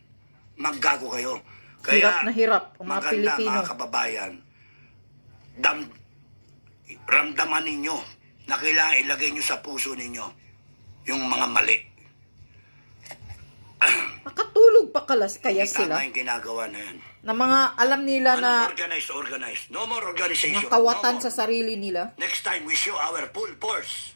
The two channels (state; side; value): inverted; both; correlation -1.00